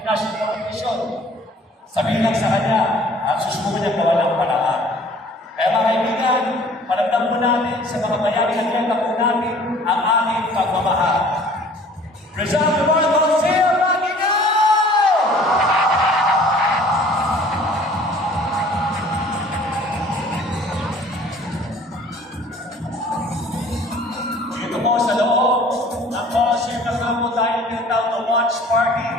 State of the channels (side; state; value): both; normal; correlation 0.52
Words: competition. Sabihin lang sa kanya at susubukan niya gawa ng paraan. Kaya mga kaibigan, paramdam po natin sa mga bayaring atleta po natin ang aming pagmamahal. Rizal Memorial Coliseum, Magino! Dito po sa loob ng Coliseum na po tayo tinatawag na watch party